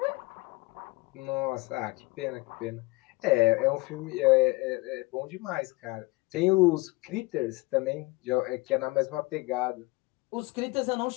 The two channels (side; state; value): right; quieter; 23.8 dB